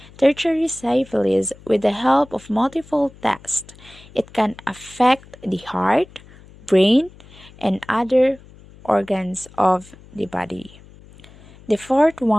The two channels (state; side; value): noise; left; hum, 23 dB below the sound